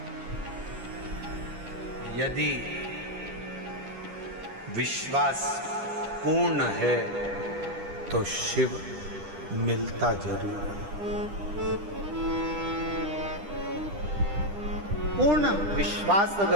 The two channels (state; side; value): late; left; 10 ms